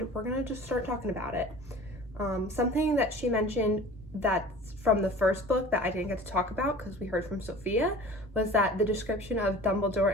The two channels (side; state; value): both; normal; correlation 0.42